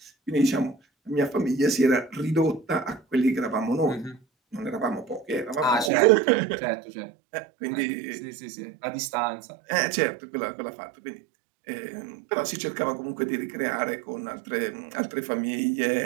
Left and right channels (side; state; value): left; drops out; at 5.9 s